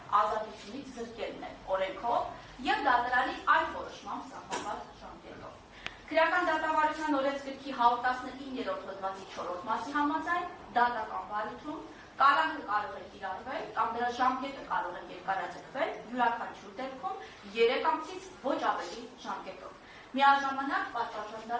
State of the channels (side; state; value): both; identical; correlation 1.00